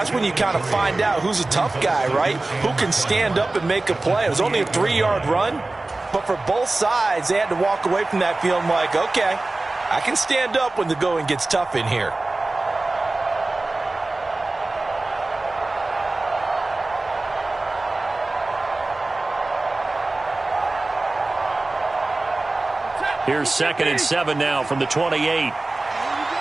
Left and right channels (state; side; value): quieter; left; 3.0 dB